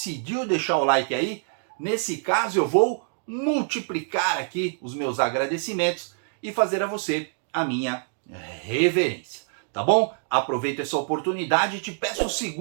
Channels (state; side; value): silent; left; digital silence